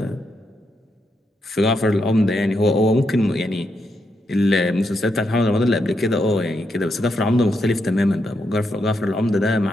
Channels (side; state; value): both; normal; correlation 0.81